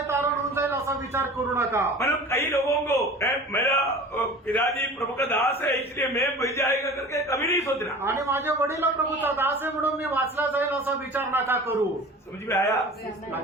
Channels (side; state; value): both; normal; correlation 0.40